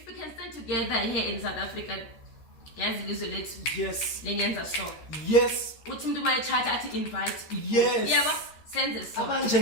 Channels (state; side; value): late; right; 13 ms